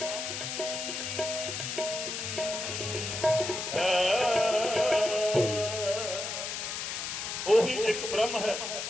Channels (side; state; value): left; noise; hiss, 4 dB below the sound